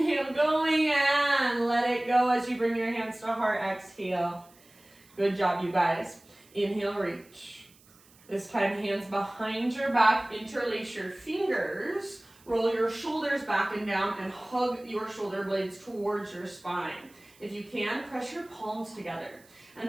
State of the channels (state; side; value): noise; right; hiss, 28 dB below the sound